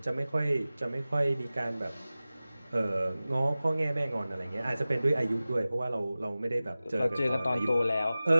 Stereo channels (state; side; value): inverted; both; correlation -0.97